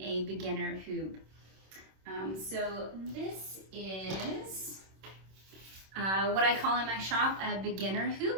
a beginner hoop. So this is what I call in my shop a beginner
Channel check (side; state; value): left; late; 26 ms